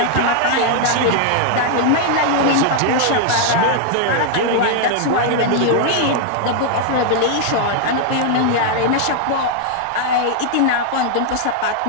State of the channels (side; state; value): both; different; correlation 0.00